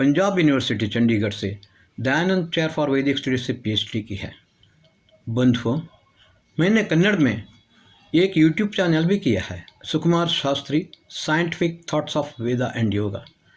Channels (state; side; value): identical; both; correlation 1.00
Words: यूनिवर्सिटी चंडीगढ़ से दयानंद चेयर फॉर वैदिक स्टडीज से पीएचडी की है। बंधुओं, मैंने कन्नड़ में एक यूट्यूब चैनल भी किया है, Sukumar Shastri scientific thoughts of Veda and yoga.